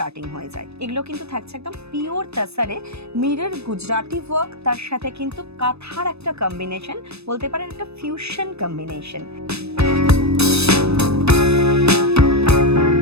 হয়ে যায়। এগুলো কিন্তু থাকছে একদম পিওর তাসারে, মিরর গুজরাটি ওয়ার্ক, তার সাথে কিন্তু কাঁথার একটা কম্বিনেশন, বলতে পারেন একটা ফিউশন কম্বিনেশন।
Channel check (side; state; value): left; late; 0.79 ms